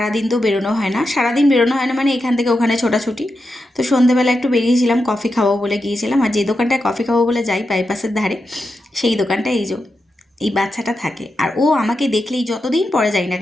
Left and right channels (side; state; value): both; normal; correlation 0.88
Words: তো বেরোনো হয় না, সারাদিন বেরোনো হয় না মানে এখান থেকে ওখানে ছোটাছুটি। তো সন্ধেবেলা একটু বেরিয়েছিলাম, কফি খাবো বলে গিয়েছিলাম। আর যে দোকানটায় কফি খাবো বলে যাই বাইপাসের ধারে, সেই দোকানটা এই বাচ্চাটা থাকে। আর ও আমাকে দেখলেই, যতদিন পরে যাই না